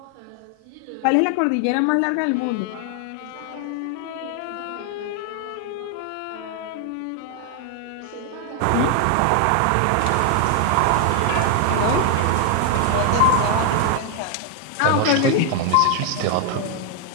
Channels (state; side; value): different; both; correlation 0.00